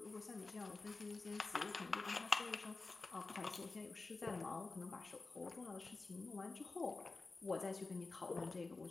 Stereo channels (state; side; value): quieter; right; 3.7 dB